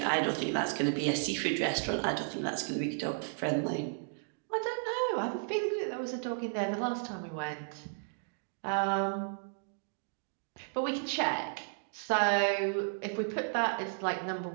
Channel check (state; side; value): silent; left; digital silence